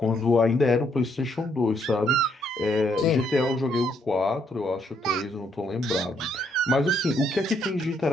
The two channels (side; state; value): both; normal; correlation 0.72